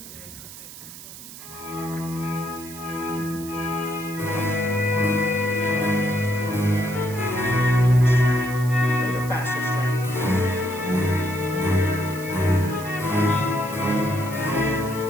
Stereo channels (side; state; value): right; noise; hiss, 15 dB below the sound